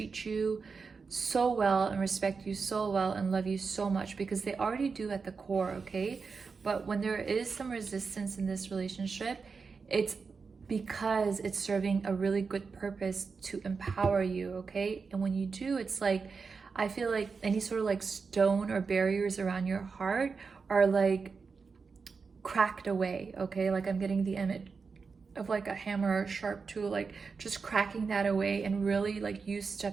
you so well and respect you so well and love you so much, because they already do at the core, okay? But when there is some resistance in this relationship, it's because it's serving a really good purpose to empower you, okay? And when you do, it's like, I feel like any sort of like stone or barriers around your heart are like cracked away, okay? Like I'm getting the image of like a hammer or a sharp tool, like just cracking that away, and really like you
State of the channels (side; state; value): left; quieter; 5.0 dB